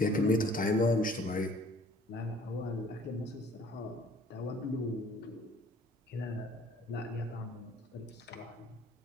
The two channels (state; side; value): normal; both; correlation 0.55